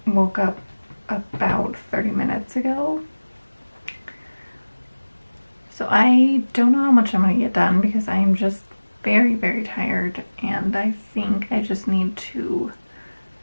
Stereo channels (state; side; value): inverted; both; correlation -1.00